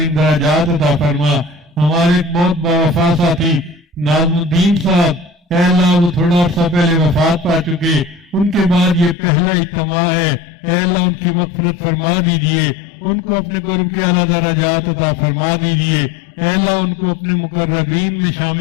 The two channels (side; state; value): right; drops out; at 9.2 s